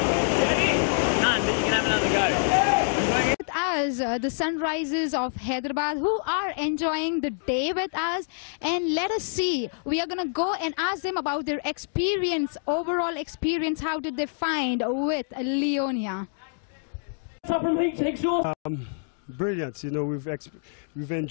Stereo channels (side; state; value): right; silent; digital silence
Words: you can have another go. With us, the Sunrises of Hyderabad, who are enjoying the day with us, and let us see. We are going to go and ask them about their experience, overall experience. How did they find with Leonia? Up from Exhaust. Brilliant. You know, we've